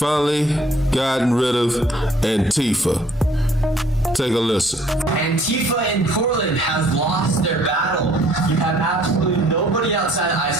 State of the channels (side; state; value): both; normal; correlation 0.59